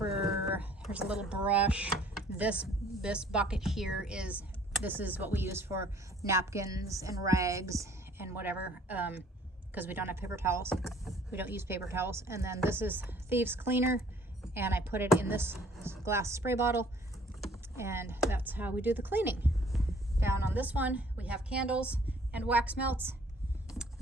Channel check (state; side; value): normal; both; correlation 0.57